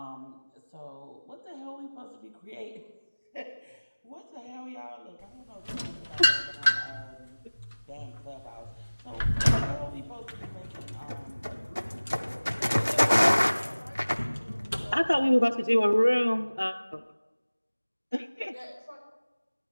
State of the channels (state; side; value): inverted; both; correlation -1.00